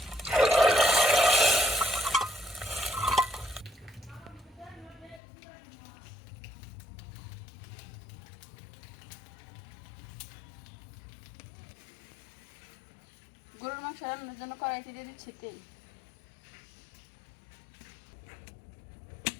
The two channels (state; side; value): drops out; right; at 5.2 s